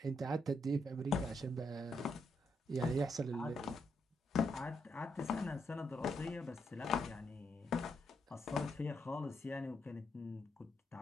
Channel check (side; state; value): both; normal; correlation 0.79